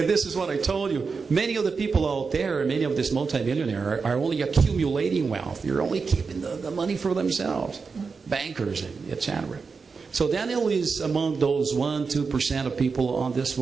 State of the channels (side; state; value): left; quieter; 4.9 dB